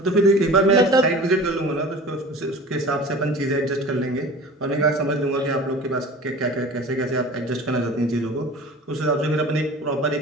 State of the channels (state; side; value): normal; both; correlation 0.39